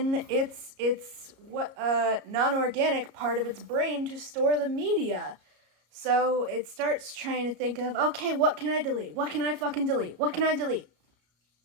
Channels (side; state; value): left; late; 34 ms